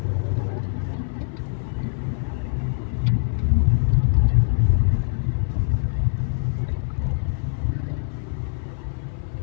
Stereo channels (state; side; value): silent; right; 55 dB below the other